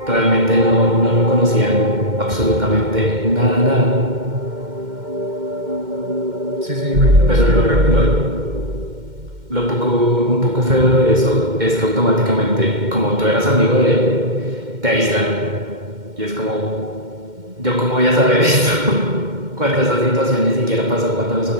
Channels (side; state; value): left; late; 2.1 ms